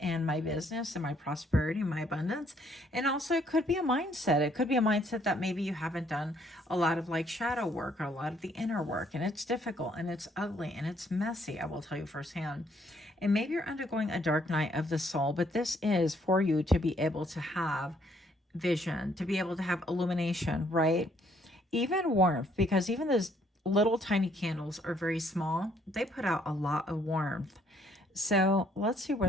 my business and my prosperity and my abundance. And also it could be a mindset. It could be a mindset that maybe you haven't done a lot of like shadow work or a lot of the inner work, and it's difficult and it's ugly and it's messy, I will tell you firsthand. And maybe you're undergoing a dark night of the soul, but this is for you to be able to have vision, to be able to have illumination, right? Even warmth, because even those little tiny candles are very small. They put out a lot of warmth. So let's see where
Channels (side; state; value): both; normal; correlation 0.67